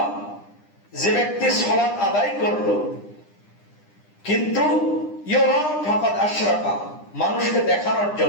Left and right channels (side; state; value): right; late; 9.9 ms